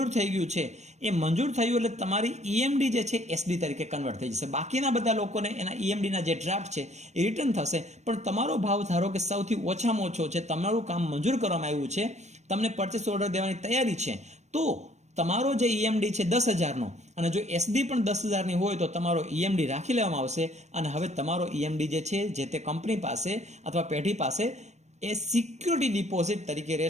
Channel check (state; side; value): late; left; 0.33 ms